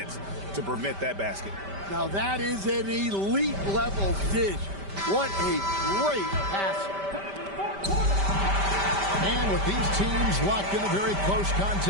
to prevent that basket. Now that is an elite level dish. What a great pass. And with these teams locked in a very close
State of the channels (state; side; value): late; left; 5.1 ms